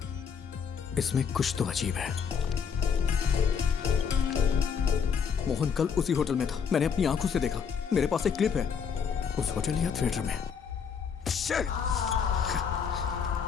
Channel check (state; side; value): quieter; right; 6.7 dB